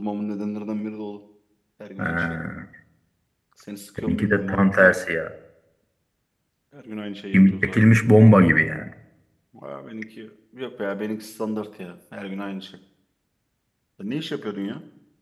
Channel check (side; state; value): both; identical; correlation 1.00